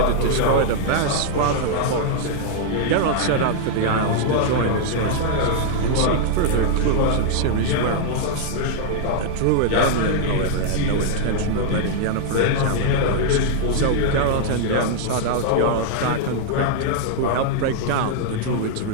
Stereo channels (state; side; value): different; both; correlation -0.01